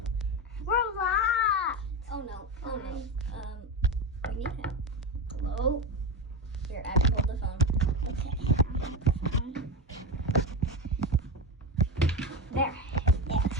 We're locked. Oh no. Oh no. We need help. Hello? Here, Abby, hold the phone. Okay. There. Yes.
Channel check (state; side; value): normal; both; correlation 0.16